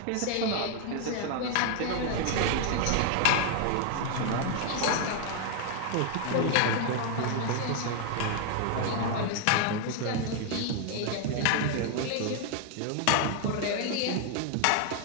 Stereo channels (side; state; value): both; different; correlation 0.00